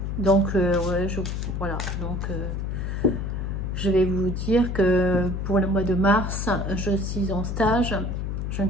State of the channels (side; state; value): left; noise; hum, 2 dB below the sound